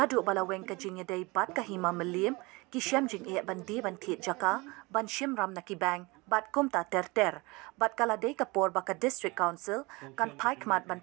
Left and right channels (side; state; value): left; quieter; 24.9 dB